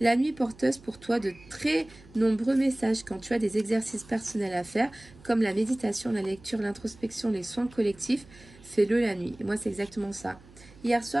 nuit porteuse pour toi de très nombreux messages quand tu as des exercices personnels à faire, comme la méditation, la lecture, l'introspection, les soins collectifs. Fais-le la nuit. Et moi, c'est exactement ça. Hier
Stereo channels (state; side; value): noise; right; hum, 24 dB below the sound